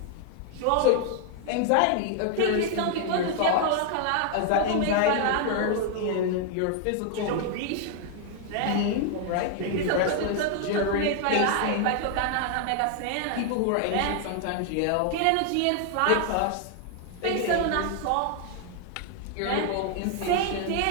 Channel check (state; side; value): different; both; correlation 0.00